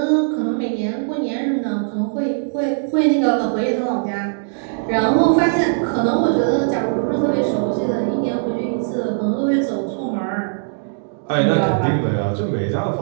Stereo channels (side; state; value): left; silent; digital silence